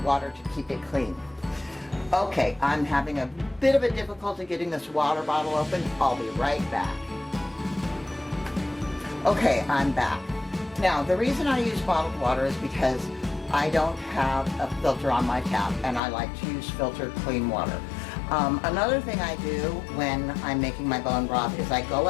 to keep it clean. Okay, I'm having a bit of a difficulty getting this water bottle open. I'll be right back. Okay, I'm back. Now, the reason I use bottled water is because I don't have a filter on my tap and I like to use filtered clean water. Another thing I do when I'm making my bone broth is I go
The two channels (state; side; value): drops out; right; at 16.0 s